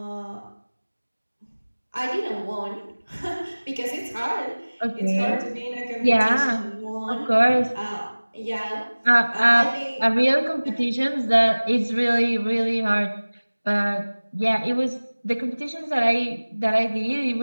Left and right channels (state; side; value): inverted; both; correlation -1.00